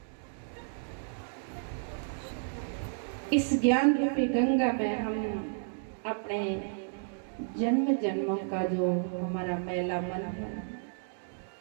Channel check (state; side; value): silent; left; digital silence